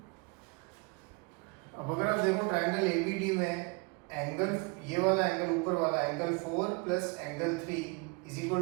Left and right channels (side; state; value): left; quieter; 30.3 dB